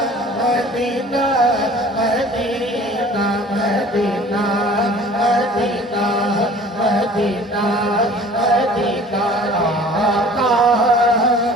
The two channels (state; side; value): normal; both; correlation 0.47